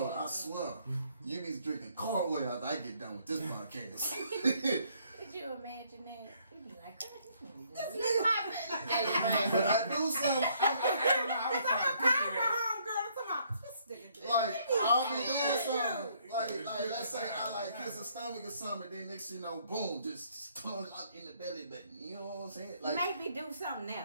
I swear. You be drinking cold oil after I get done with this podcast. Could you imagine that? You'd be like, this is my But I do something. I was trying to picture that. Like, I'll be doing something. Like, let's say I like kiss a stomach or something, then next thing you know, boom, just tongue out in the belly button. You know what I'm saying? Like, maybe do something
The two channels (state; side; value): inverted; both; correlation -0.66